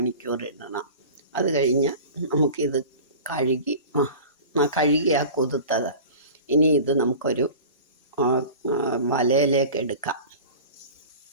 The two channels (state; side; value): inverted; both; correlation -0.37